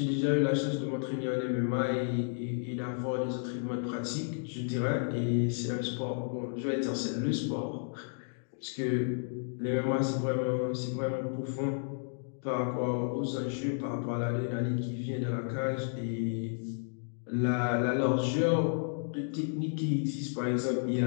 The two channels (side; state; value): right; silent; digital silence